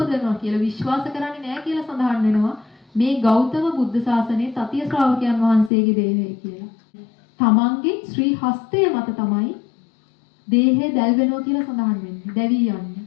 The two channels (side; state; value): right; drops out; at 5.7 s